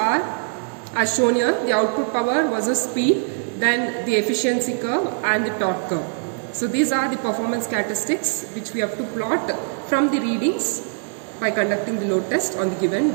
as shown here: the output power versus speed, then the efficiency curve and the torque curve. So these are the performance characteristics which we have to plot from the readings by conducting the load test on the given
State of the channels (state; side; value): silent; left; 60 dB below the other